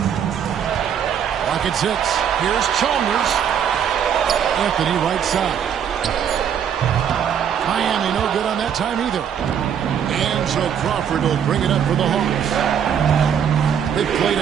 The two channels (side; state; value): left; quieter; 8.4 dB